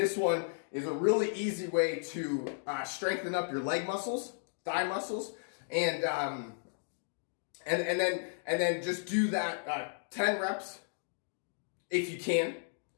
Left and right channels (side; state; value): right; silent; digital silence